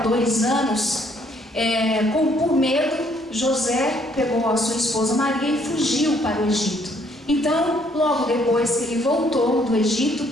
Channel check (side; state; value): both; normal; correlation 0.66